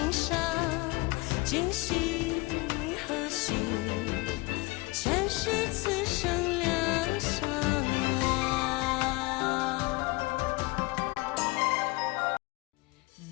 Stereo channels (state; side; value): quieter; right; 24.3 dB